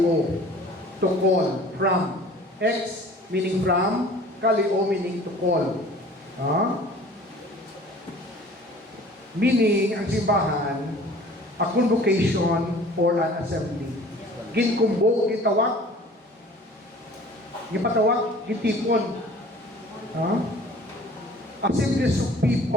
To call. From. Ex meaning from. Kalio meaning to call. Meaning, ang simbahan, a convocation or an assembly. Ginkumbo, gitawag, gipatawag, gitipon. Assemblies of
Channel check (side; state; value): both; normal; correlation 0.48